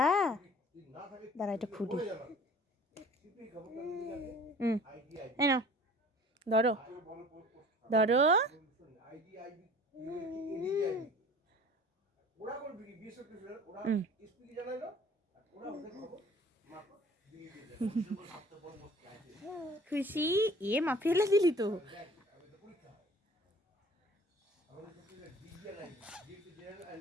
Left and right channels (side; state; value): both; normal; correlation 0.48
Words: দাঁড়া এটা খুঁটি। এই নাও, ধরো ধরো। খুশি? মা ফেলে দিলি তো।